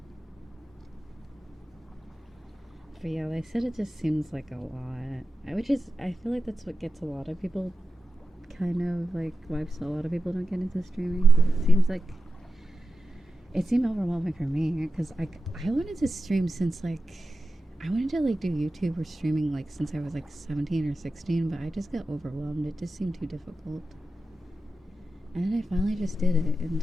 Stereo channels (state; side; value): normal; both; correlation 0.90